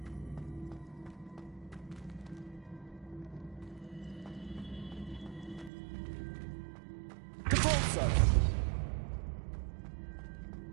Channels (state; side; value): drops out; left; at 5.7 s